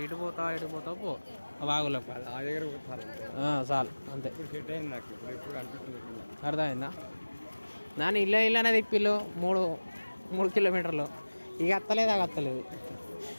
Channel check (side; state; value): both; inverted; correlation -1.00